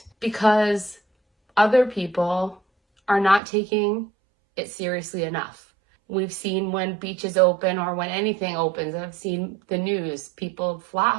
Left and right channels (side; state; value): left; drops out; at 3.4 s